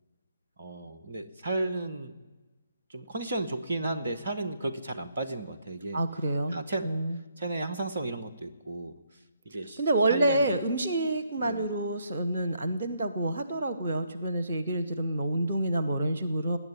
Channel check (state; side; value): inverted; both; correlation -0.73